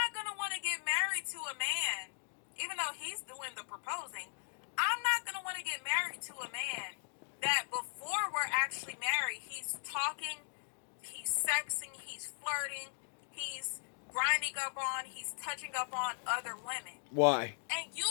going to want to get married to a man, even though he's doing the proposing. I'm not going to want to get married to a man that before we're actually married, he's talking, he's sexing, he's flirting, he's grinding up on, he's touching up on other women. Why? And you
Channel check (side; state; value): right; silent; digital silence